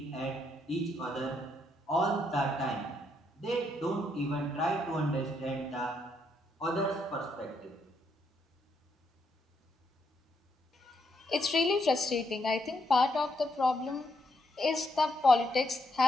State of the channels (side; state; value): both; normal; correlation 0.77